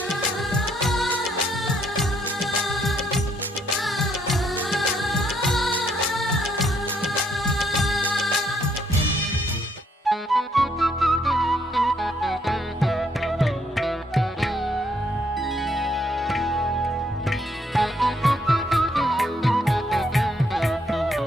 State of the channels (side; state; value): both; normal; correlation 0.71